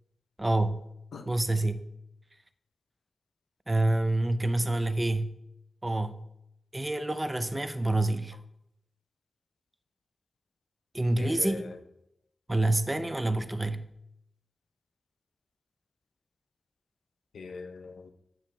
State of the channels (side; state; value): both; normal; correlation 0.97